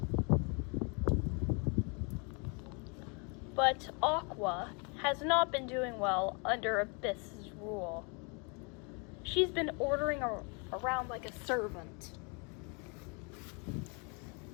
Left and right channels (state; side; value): quieter; right; 34.4 dB